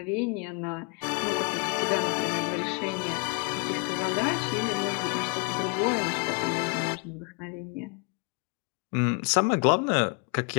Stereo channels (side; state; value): right; quieter; 32.9 dB